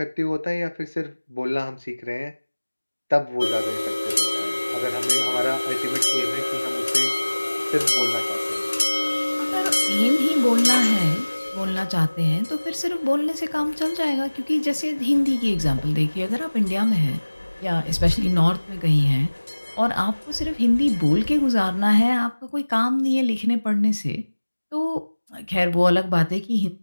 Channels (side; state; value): both; inverted; correlation -1.00